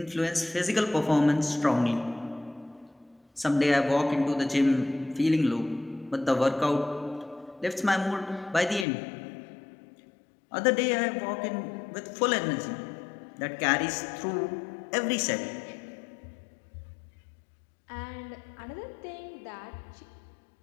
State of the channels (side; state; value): right; drops out; at 8.8 s